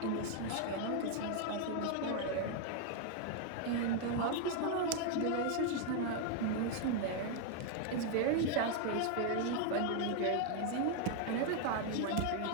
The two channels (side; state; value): both; different; correlation 0.00